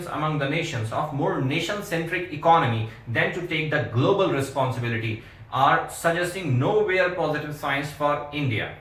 among the nations of more nation-centric economy than to take the global responsibility are suggesting nowhere positive signs for India.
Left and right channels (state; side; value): identical; both; correlation 1.00